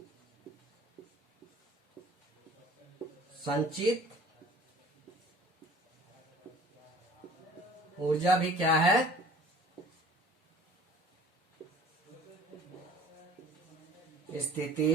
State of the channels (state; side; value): normal; both; correlation 0.49